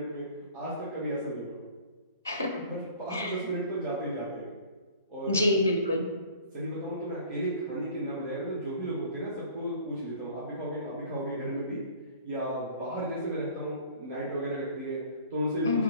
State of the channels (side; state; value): both; inverted; correlation -0.48